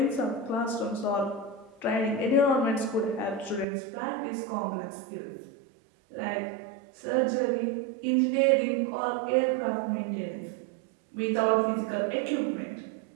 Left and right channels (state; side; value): drops out; left; at 3.7 s